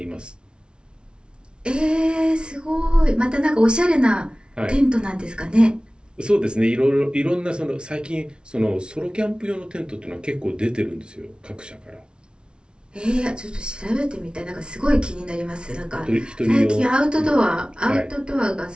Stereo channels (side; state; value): left; late; 0.056 ms